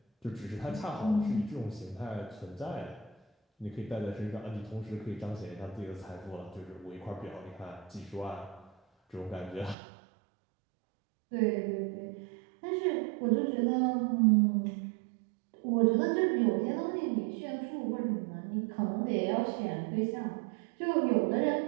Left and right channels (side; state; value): left; drops out; at 9.8 s